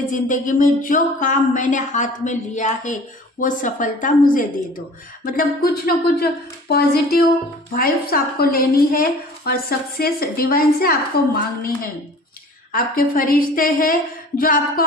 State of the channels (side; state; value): both; normal; correlation 0.46